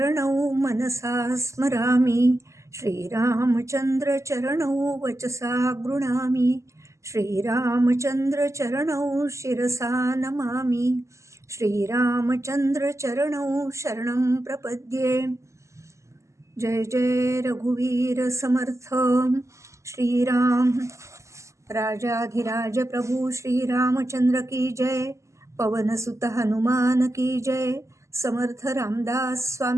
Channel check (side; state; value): left; late; 0.14 ms